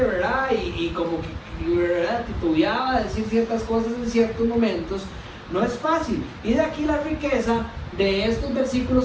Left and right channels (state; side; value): identical; both; correlation 1.00